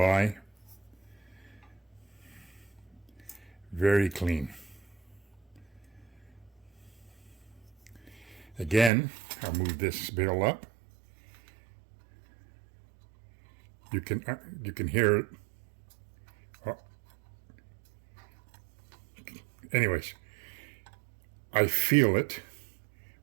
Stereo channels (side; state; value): left; drops out; at 8.9 s